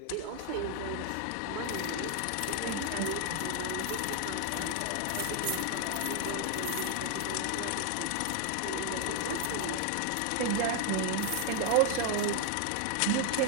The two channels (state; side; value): different; both; correlation 0.00